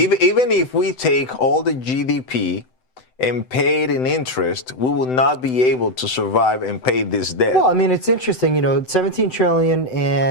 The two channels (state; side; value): late; right; 7.9 ms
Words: if we take all the GDP and pay it in interest, we will not be able to survive and pay this debt. Well, I mean, it's interesting, you know, 17 trillion